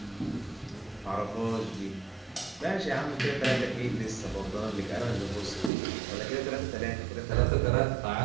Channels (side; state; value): left; drops out; at 5.7 s